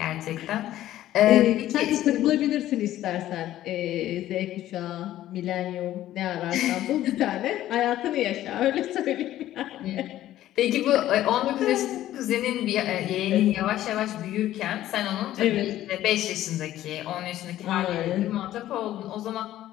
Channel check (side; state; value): right; quieter; 13.5 dB